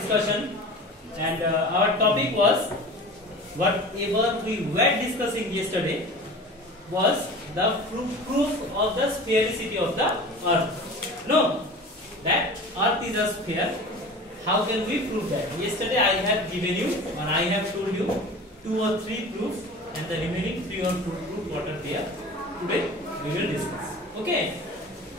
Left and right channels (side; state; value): both; normal; correlation 0.37